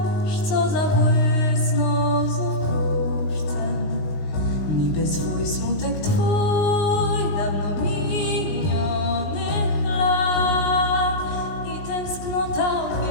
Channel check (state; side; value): late; right; 19 ms